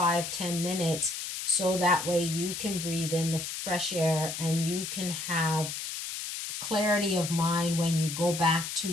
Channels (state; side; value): noise; left; hiss, 6 dB below the sound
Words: minutes, so that way you can breathe in the fresh air and you can have clarity of mind when you go back to